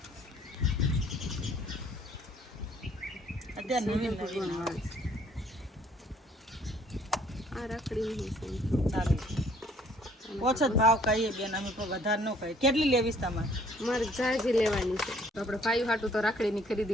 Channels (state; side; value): normal; both; correlation 0.61